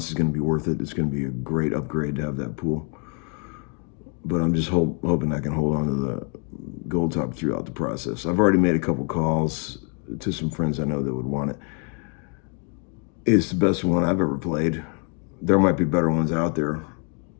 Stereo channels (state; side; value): quieter; right; 38.2 dB